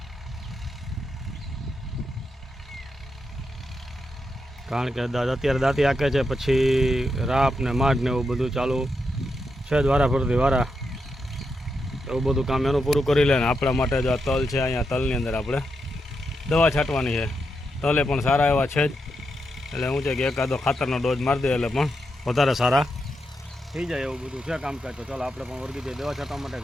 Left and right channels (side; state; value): both; normal; correlation 0.84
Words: કારણ કે અત્યારે દાંતી આંકે છે, પછી રાપ ને માઢ ને એવું બધું ચાલુ છે જ વારા ફરતી વારા, એવું બધું કામ એનું પૂરું કરી લે ને આપણા માટે જો આ તલ છે, અહીંયા તલની અંદર આપણે દવા છાંટવાની છે। તલે પણ સારા એવા છે જ, એટલે શું છે કે એકાદો ખાતરનો ડોઝ મારી દે એટલે પણ વધારે સારા થઈ જાય એવું બધું છે કામકાજ। તો ચાલો આપણે પણ વળગી જઈએ દવા છાંટવા માટે